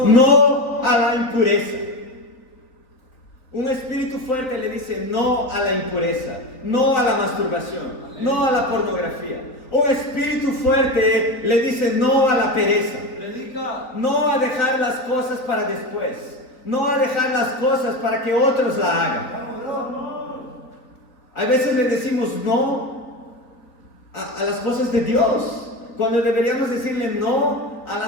no a la impureza. Un espíritu fuerte le dice no a la impureza, no a la masturbación, no a la pornografía. Un espíritu fuerte le dice no a la pereza, no a dejar las cosas para después, no a dejar las cosas para que otros la hagan. A veces le decimos no a las cosas de Dios, cuando deberíamos decirle no a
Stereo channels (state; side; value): late; right; 4.1 ms